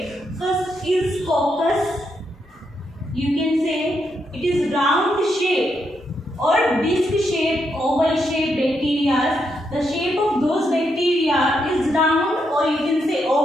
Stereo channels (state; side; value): normal; both; correlation 0.80